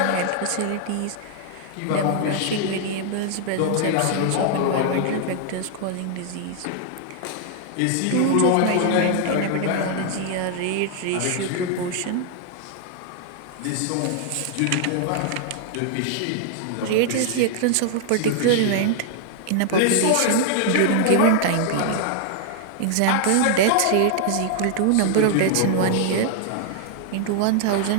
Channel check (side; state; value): both; different; correlation 0.00